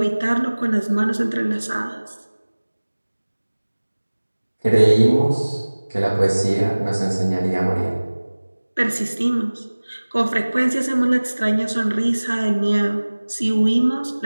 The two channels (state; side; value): inverted; both; correlation -1.00